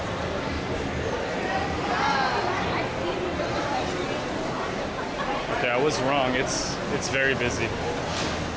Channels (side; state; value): both; identical; correlation 1.00